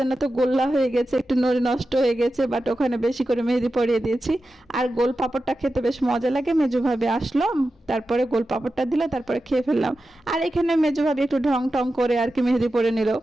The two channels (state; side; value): normal; both; correlation 0.92